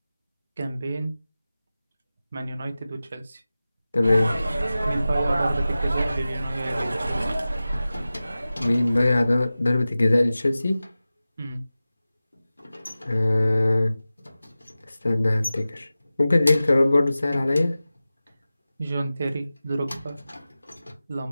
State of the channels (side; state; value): both; inverted; correlation -0.96